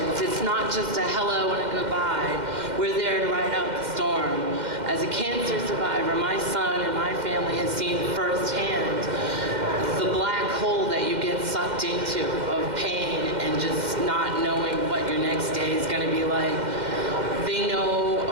It's not just a hello and a goodbye. We're there to ride out the storm. As a cancer survivor, my son and my family has seen firsthand the black hole that you get sucked into of pain and just not knowing what your next day is going to be like. They know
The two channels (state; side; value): late; left; 2.1 ms